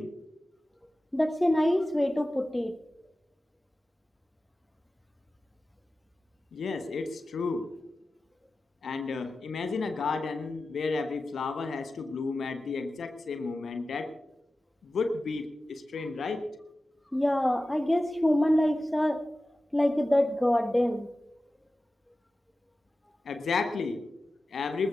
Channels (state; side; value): normal; both; correlation 0.95